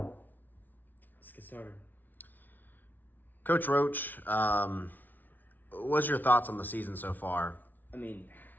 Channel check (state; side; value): late; right; 0.084 ms